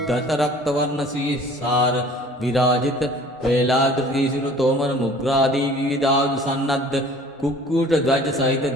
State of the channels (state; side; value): normal; both; correlation 0.49